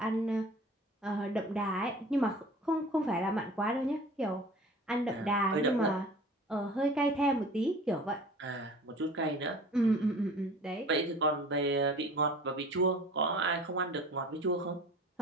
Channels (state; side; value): normal; both; correlation 0.43